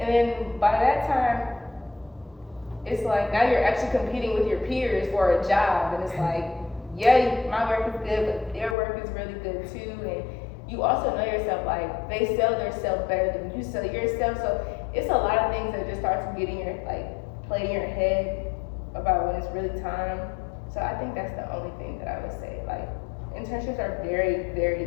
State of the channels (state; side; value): drops out; right; at 8.8 s